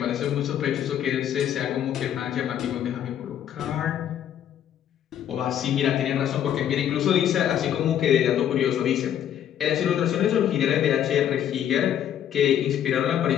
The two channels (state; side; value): quieter; right; 10.1 dB